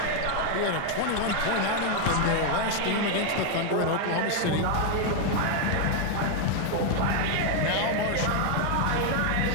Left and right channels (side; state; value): both; different; correlation 0.00